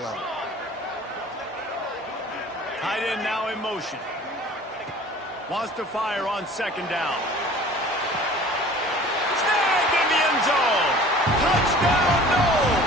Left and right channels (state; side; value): normal; both; correlation 0.46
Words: Tight end now in motion. Wants to fire on 2nd down. Snagged in the end zone. Touchdown,